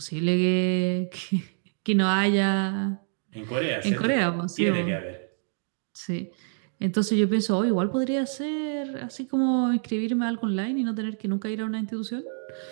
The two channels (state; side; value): silent; left; 60 dB below the other